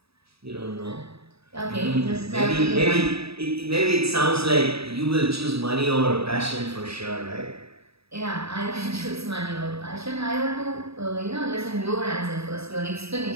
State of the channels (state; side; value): late; left; 0.77 ms